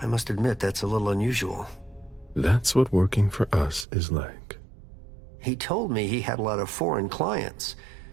must admit, that's a little unusual. That's what working for us is like. He told me he had a lot of foreign clients,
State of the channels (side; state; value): left; drops out; at 3.9 s